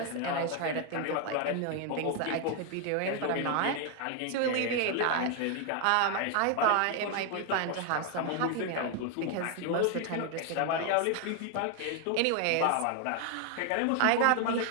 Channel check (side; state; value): both; different; correlation 0.00